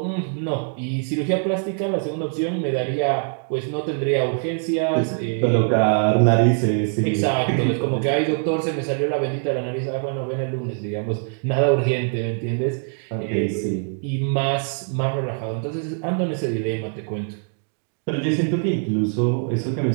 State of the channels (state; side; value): silent; left; 58 dB below the other